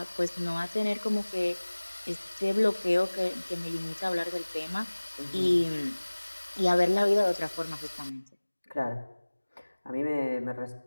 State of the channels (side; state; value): both; inverted; correlation -1.00